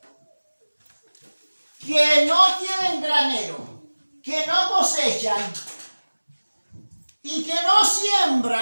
que no tienen granero, que no cosechan y que no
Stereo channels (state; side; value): inverted; both; correlation -1.00